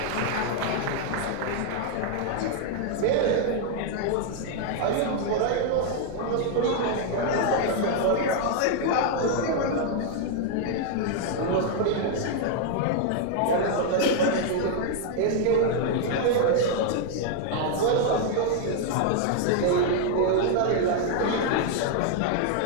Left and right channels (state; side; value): different; both; correlation 0.00